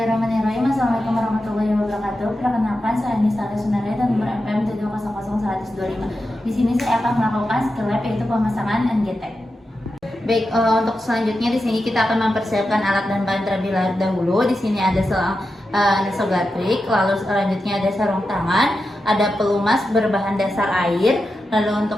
Assalamualaikum warahmatullahi wabarakatuh. Perkenalkan, saya Nisa Sunare dan nomor MPM 7000125. Di sini saya akan melakukan skill lab yaitu pemasangan NGT. Baik, untuk selanjutnya di sini kita akan mempersiapkan alat dan bahan terlebih dahulu. Di sini ada selang nasogatrik, lalu selanjutnya ada sarung tangan, ada pelumas berbahan dasar air. Lalu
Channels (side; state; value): both; normal; correlation 0.90